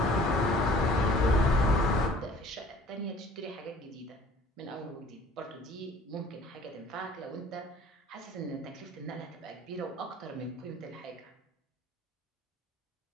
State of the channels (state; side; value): normal; both; correlation 0.51